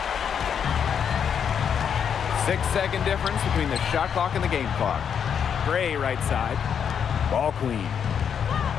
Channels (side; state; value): right; quieter; 7.7 dB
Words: 6-second difference between the shot clock and the game clock. Gray right side. Ball queen.